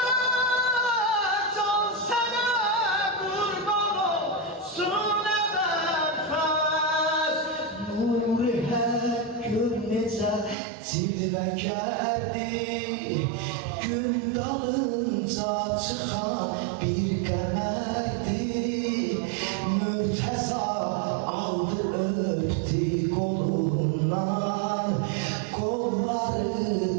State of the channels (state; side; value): drops out; left; at 10.6 s